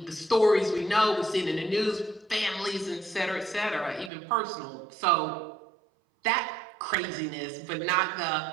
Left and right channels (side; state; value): left; drops out; at 4.1 s